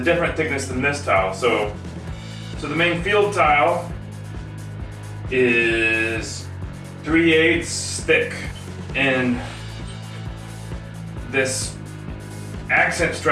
thickness than this tile. So the main field tile is 3/8 thick, and this accent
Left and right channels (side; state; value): both; identical; correlation 1.00